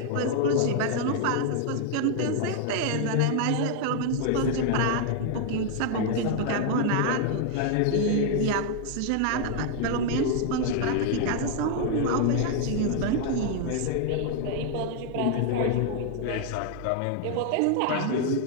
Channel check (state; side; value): different; both; correlation 0.00